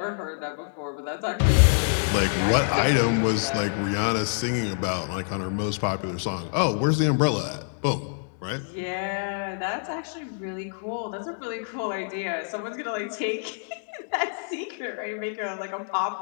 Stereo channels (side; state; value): right; silent; digital silence